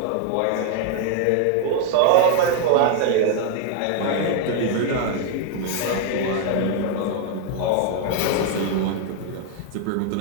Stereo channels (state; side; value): different; both; correlation 0.00